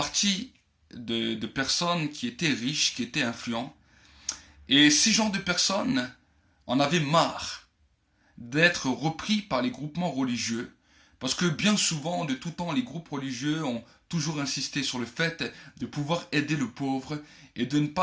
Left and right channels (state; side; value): identical; both; correlation 1.00